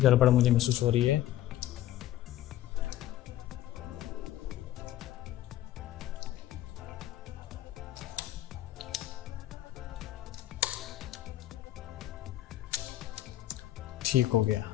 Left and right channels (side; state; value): right; quieter; 13.7 dB